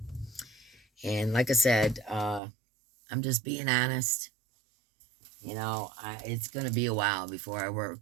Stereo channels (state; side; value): drops out; left; at 2.4 s